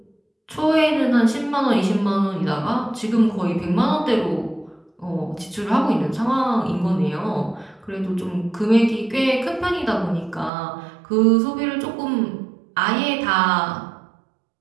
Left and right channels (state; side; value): drops out; left; at 10.5 s